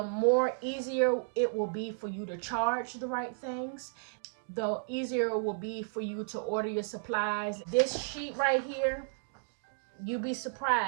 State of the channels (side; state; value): left; silent; digital silence